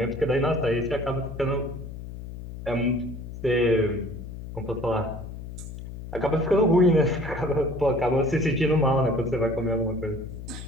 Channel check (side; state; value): left; noise; hum, 11 dB below the sound